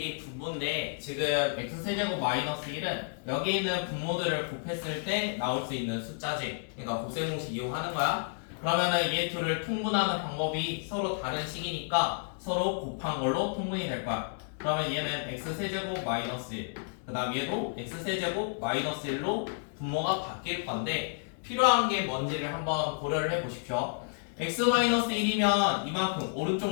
분모인데 지금 x세제곱 마이너스 1은 여기 있는 분모들을 곱했을 때 나올 수 있는 숫자지. 그러니까 곱셈 공식 이용하는 거야. 그러면은 얘 둘을 통분하는 방법이 서로 다른 식이니까 서로 곱한 걸로 통분이 될 거야. 그러면 얘는 x세제곱 마이너스 1, 그 다음 얘도 x세제곱 마이너스 1로 분모가 바뀔 건데 필요한 게 뭔지를 한번 고려를 해보십시오. x-1이면 이만큼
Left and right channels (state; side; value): silent; right; 57 dB below the other